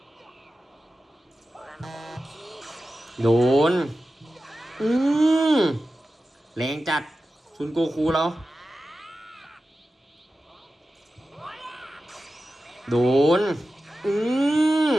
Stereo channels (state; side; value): normal; both; correlation 0.93